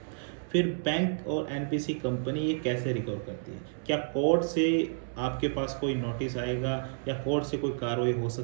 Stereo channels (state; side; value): silent; left; 58 dB below the other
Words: फिर बैंक और एनपीसी कंपनी ये कैसे रिकवर करती है, क्या कोर्ट से आपके पास कोई नोटिस आएगा या कोर्ट से कोई कार्रवाई हो